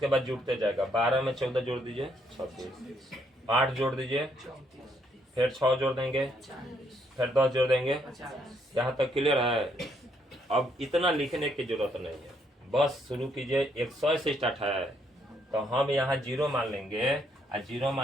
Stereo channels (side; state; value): both; normal; correlation 0.72